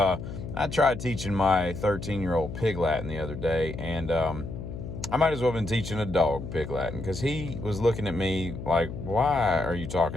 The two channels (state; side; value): noise; left; hum, 8 dB below the sound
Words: tried teaching my 13-year-old Pig Latin the other day, and I might as well have been teaching a dog Pig Latin, because he was looking at me like, why are you